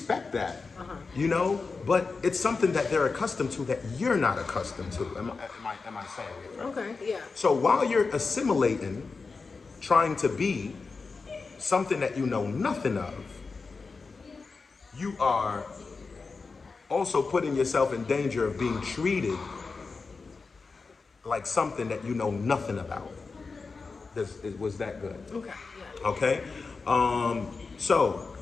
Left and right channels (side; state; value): right; quieter; 4.4 dB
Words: that, you know, but it's something that they're accustomed to that you're not accustomed to. Am I saying it right? Okay, yeah. So while you're assimilating, trying to be something that you know nothing of, you are also putting yourself in danger of being treated like something that you know nothing about. Was that good? Okay, yeah. Okay? So,